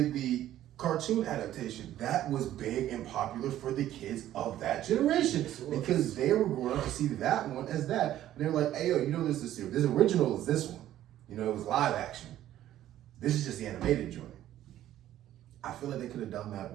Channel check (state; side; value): quieter; left; 12.8 dB